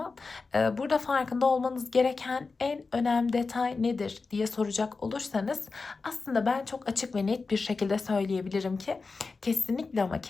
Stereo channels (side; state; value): right; quieter; 4.2 dB